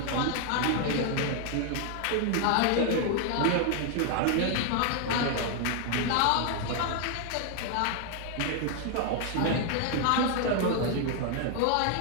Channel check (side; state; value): both; different; correlation 0.00